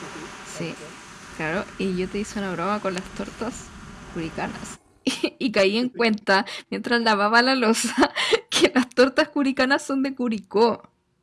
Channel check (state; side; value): identical; both; correlation 1.00